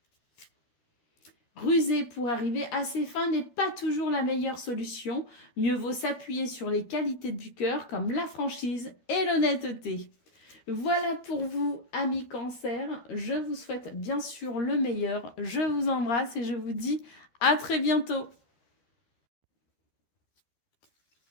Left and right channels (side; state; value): right; late; 13 ms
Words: Ruser pour arriver à ses fins n'est pas toujours la meilleure solution. Mieux vaut s'appuyer sur les qualités du cœur comme la franchise et l'honnêteté. Voilà pour vous, amis Cancer. Je vous souhaite bien sûr le meilleur. Je vous embrasse et je vous dis à très bientôt.